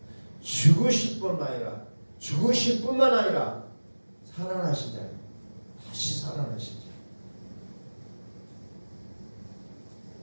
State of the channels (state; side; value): inverted; both; correlation -1.00